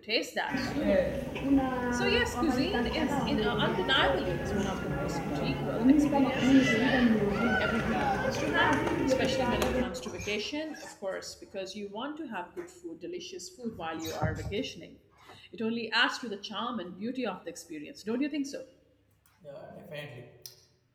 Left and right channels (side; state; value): both; identical; correlation 1.00